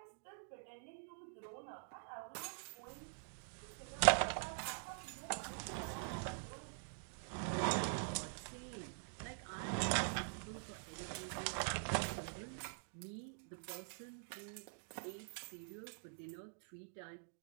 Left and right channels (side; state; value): left; silent; digital silence